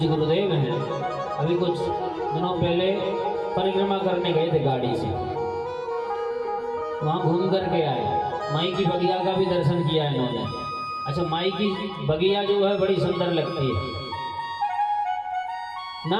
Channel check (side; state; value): both; identical; correlation 1.00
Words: गुरुदेव हैं, अभी कुछ दिनों पहले परिक्रमा करने गए थे गाड़ी से, वहाँ घूम करके आए। माई की बगिया का भी दर्शन किया इन्होंने। अच्छा, माई की बगिया जो है बड़ी सुंदर लगती है।